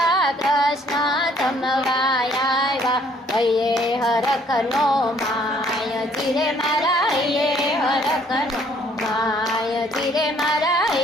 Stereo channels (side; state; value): both; normal; correlation 0.62